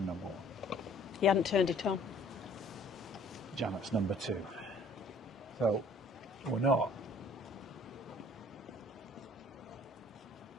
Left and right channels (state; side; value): normal; both; correlation 0.55